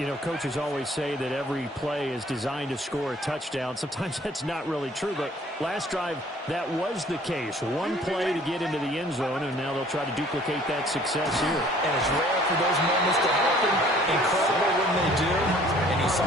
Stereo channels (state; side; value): normal; both; correlation 0.55